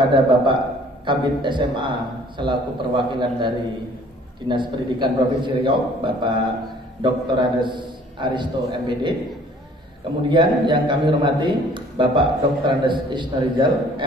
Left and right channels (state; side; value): normal; both; correlation 0.55